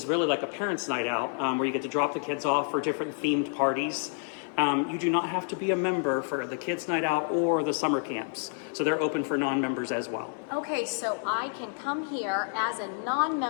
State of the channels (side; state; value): right; silent; 59 dB below the other